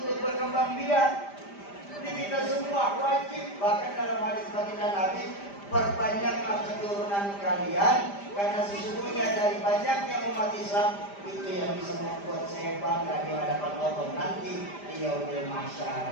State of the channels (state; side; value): late; right; 5.0 ms